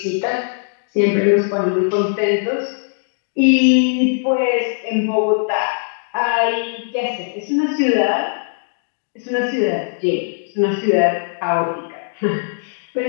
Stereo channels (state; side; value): silent; right; digital silence